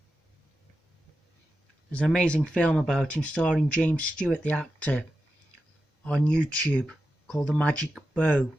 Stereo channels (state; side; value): normal; both; correlation 0.90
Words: There's an amazing film about him starring James Stewart, the actor, on YouTube called The Magic Bow.